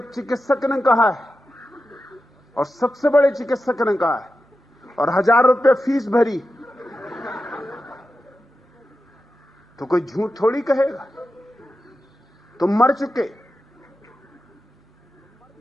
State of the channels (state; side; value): normal; both; correlation 0.91